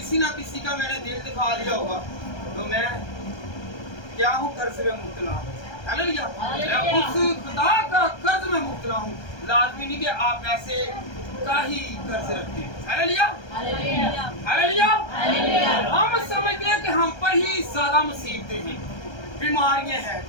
ना किसी का मैंने दिल दिखा दिया होगा तो मैं क्या हूँ? कर्ज में मुब्तला हूँ। हालेलुया। मैं उस खुदा का कर्ज में मुब्तला हूँ। लाजमी नहीं कि आप ऐसे का ही कर्ज रखते हैं। Hallelujah hallelujah. हम समझते हैं कि हम पर ही ज्यादा मुसीबतें हैं, बीमारियां हैं,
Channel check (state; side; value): late; right; 1.3 ms